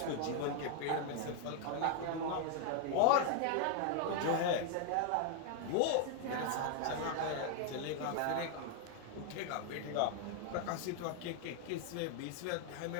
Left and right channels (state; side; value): different; both; correlation 0.00